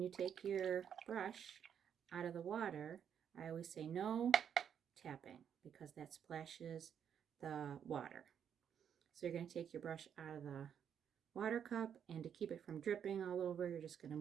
you take your brush out of the water, I always say no tapping because that splashes the water. So you're going to take your brush out of the water cup, and to keep it from dripping all over, you're just going to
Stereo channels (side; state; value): left; quieter; 8.3 dB